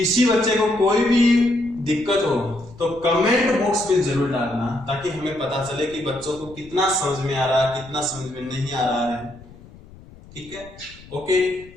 बच्चे को कोई भी दिक्कत हो तो कमेंट बॉक्स में जरूर डालना, ताकि हमें पता चले कि बच्चों को कितना समझ में आ रहा है, कितना समझ में नहीं आ रहा है। ठीक है, ओके,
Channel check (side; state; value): left; noise; rumble, 21 dB below the sound